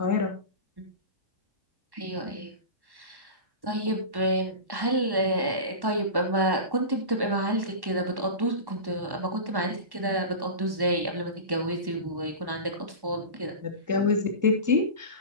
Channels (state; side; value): late; left; 1.1 ms